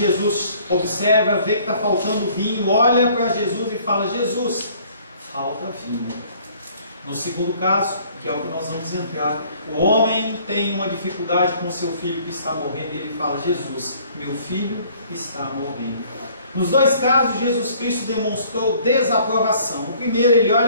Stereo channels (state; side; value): inverted; both; correlation -0.57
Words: observa, vê que está faltando vinho, olha para Jesus e fala: Jesus, falta vinho. No segundo caso, que é o que nós vamos entrar, o homem tem uma dificuldade com o seu filho que está morrendo, e ele fala: Jesus, meu filho está morrendo. Nos dois casos, Jesus Cristo demonstrou desaprovação. No primeiro, ele